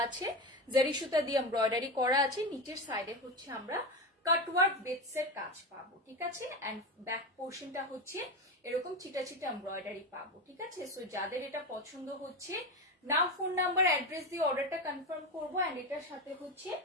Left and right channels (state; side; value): normal; both; correlation 0.18